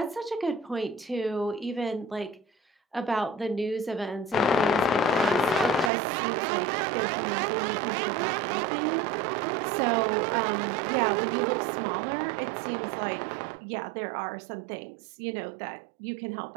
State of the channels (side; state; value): left; drops out; at 5.9 s